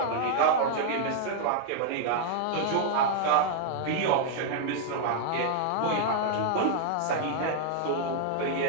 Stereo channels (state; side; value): different; both; correlation -0.01